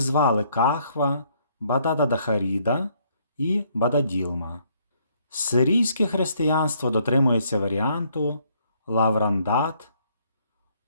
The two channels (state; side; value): inverted; both; correlation -0.68